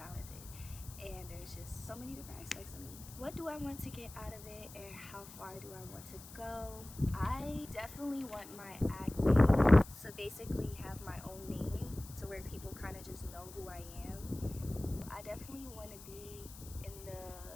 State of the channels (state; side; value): noise; left; hiss, 16 dB below the sound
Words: and there's just so many different aspects of me. What do I want to get out of it, and how far do I want to go? I definitely want my acting to basically have my own name, to where people kind of just know who I am. I definitely want to be